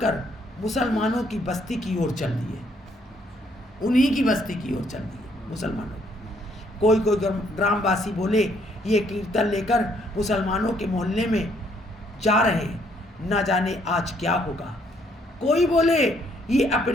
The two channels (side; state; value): both; normal; correlation 0.68